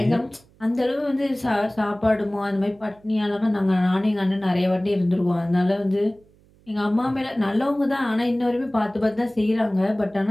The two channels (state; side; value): noise; right; hum, 30 dB below the sound